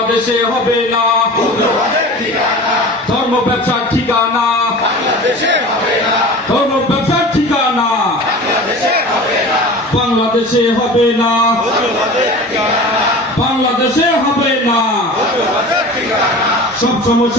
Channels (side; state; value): both; normal; correlation 0.37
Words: হবে না, ধর্ম ব্যবসার ঠিকানা, ধর্ম ব্যবসার ঠিকানা বাংলাদেশে হবে না, বাংলাদেশে হবে না। সব